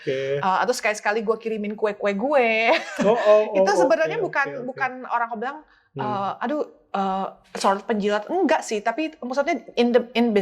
Atau sekali-sekali gue kirimin kue-kue gue. Itu sebenarnya bukan orang kau bilang, sort penjilat, enggak sih, tapi maksudnya in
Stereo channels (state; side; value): identical; both; correlation 1.00